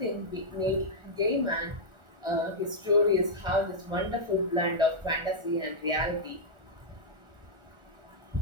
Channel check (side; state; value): left; late; 1.4 ms